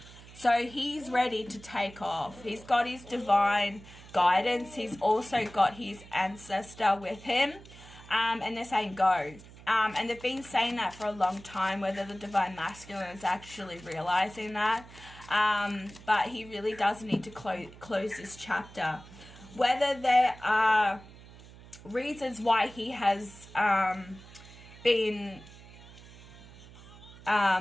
So he's ready to take off. He's got his divine guidance. He's also got his ancestor with him. And they're saying go. And they've been saying that for a long time, whether the divine masculine is actually realizing that. But he really does need to close this chapter. Whether there are reasons why he has been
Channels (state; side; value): noise; right; hum, 19 dB below the sound